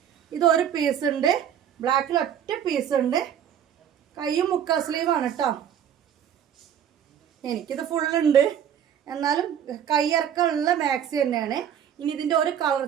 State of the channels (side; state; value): left; quieter; 9.3 dB